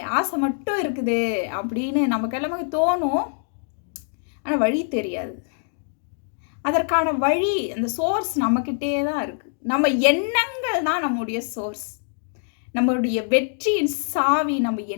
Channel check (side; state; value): right; silent; digital silence